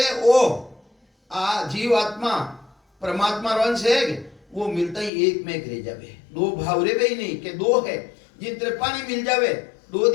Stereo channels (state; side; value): drops out; right; at 5.1 s